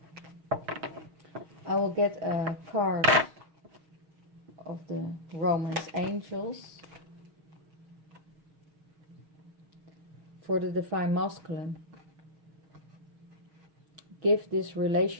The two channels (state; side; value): late; left; 6.4 ms